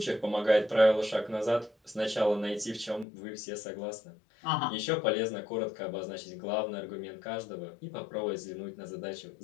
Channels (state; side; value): drops out; right; at 3.1 s